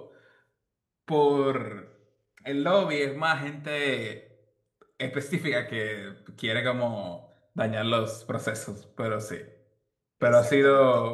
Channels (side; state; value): both; identical; correlation 1.00